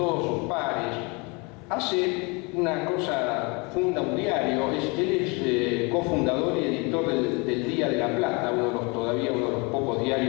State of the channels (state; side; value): quieter; right; 29.5 dB